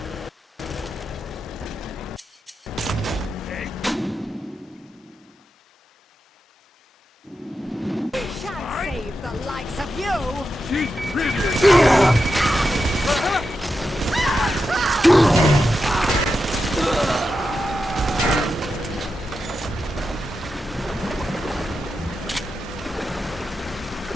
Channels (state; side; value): normal; both; correlation 0.88